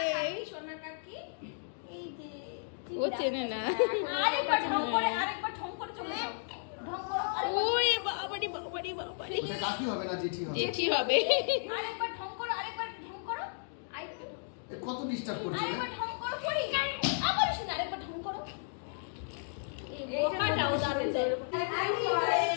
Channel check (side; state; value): right; silent; digital silence